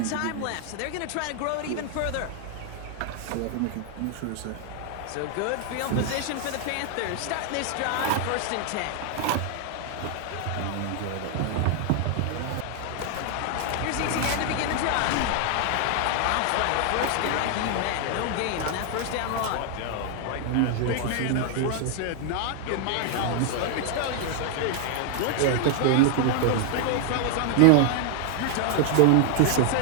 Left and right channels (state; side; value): different; both; correlation 0.00